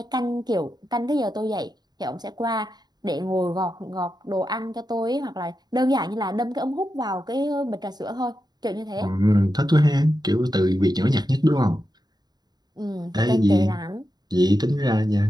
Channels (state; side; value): late; left; 0.20 ms